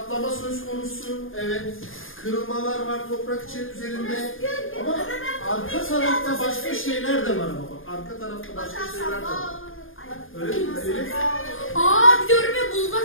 söz konusu. Evet. Kırılmalar var toprak üzerinde. Ama arka tarafta başka şeyler de var ama bak. Arka tarafta başka şeyler de var. Öyle değil mi Elif? Aa diyorum ya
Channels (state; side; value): late; right; 0.59 ms